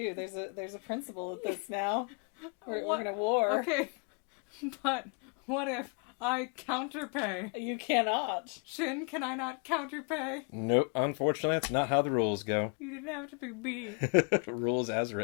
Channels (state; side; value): quieter; right; 38.6 dB